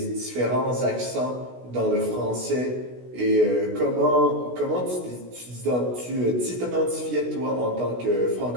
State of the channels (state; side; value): late; left; 16 ms